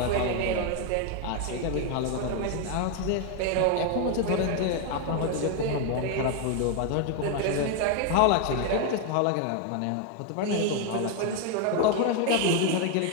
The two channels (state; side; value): different; both; correlation 0.01